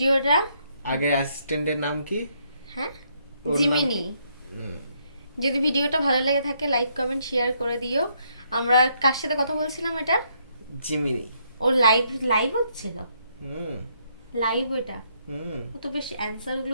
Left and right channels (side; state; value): both; inverted; correlation -0.72